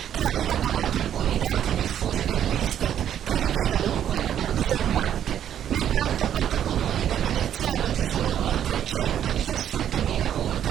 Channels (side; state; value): left; quieter; 10.1 dB